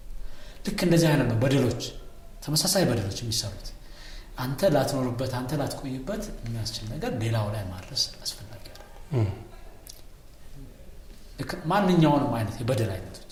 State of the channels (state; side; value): identical; both; correlation 1.00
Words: ልክ እንደዚህ አይነት ነው በደሎች፣ ተመሳሳይ በደሎች የሚሰሩት። አንተ ላትኖርበት፣ አንተ ላትቆይበት የሚያስችል ነገር ሌላው ላይ ማድረስ አስፈላጊ አይደለም። ማንኛውንም አይነት የበደል አይነቶች።